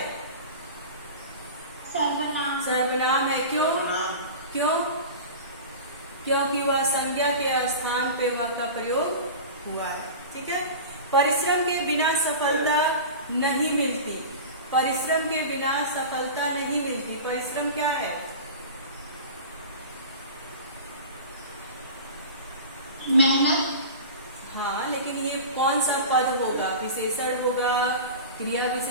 सर्वनाम। सर्वनाम है। क्यों? क्यों? क्योंकि वह संज्ञा के स्थान पे वह का प्रयोग हुआ है। ठीक है। परिश्रम के बिना सफलता नहीं मिलती। परिश्रम के बिना सफलता नहीं मिलती। परिश्रम क्या है? मेहनत। हाँ, लेकिन ये कौन सा पद होगा? विशेषण होगा, क्रिया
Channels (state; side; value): inverted; both; correlation -0.32